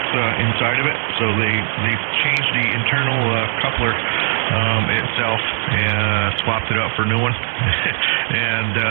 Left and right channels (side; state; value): left; silent; 60 dB below the other